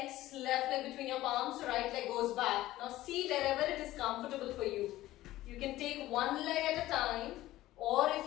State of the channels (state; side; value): quieter; right; 15.8 dB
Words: left leg between your palms, right leg goes back. Now see wherever it is comfortable for you. You can take one leg at a time, or